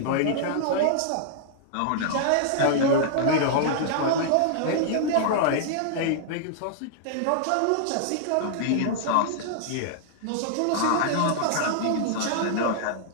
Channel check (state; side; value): different; both; correlation -0.01